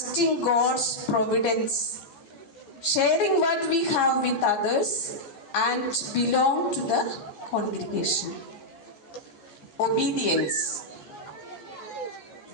God's providence, sharing what we have with others, and belong to the congregation. Obedience,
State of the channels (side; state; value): right; late; 14 ms